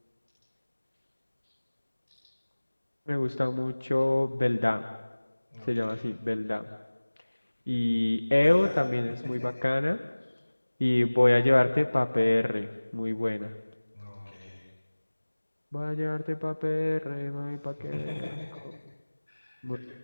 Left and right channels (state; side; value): inverted; both; correlation -1.00